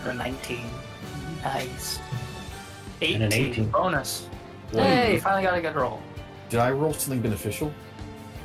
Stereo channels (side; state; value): both; identical; correlation 1.00